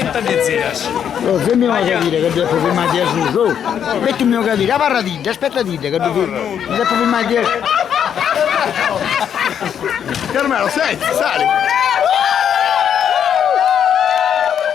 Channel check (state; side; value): quieter; right; 8.7 dB